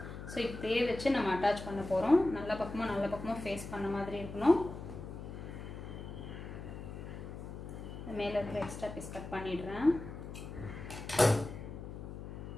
ஸோ இப்படியே வச்சு நம்ம அட்டாச் பண்ண போகிறோம். நல்ல பக்கமும் ஃபேஸ் பண்ண மாதிரி இருக்கணும். மேலே இருக்கிற எக்ஸ்ட்ரா பீஸ் கட் பண்ணிடுறேன்.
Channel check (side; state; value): left; noise; hum, 10 dB below the sound